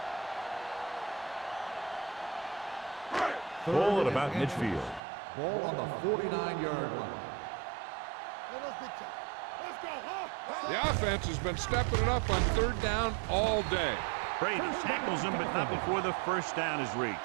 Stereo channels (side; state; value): left; drops out; at 5.0 s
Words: Ball at about midfield. Ball on the 49-yard line. Let's go, huh? The offense has been stepping it up on third down all day. Brady tackles him, but not before the first down is